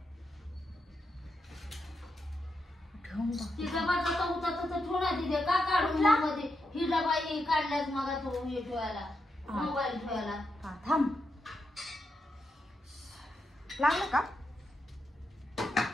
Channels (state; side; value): normal; both; correlation 0.84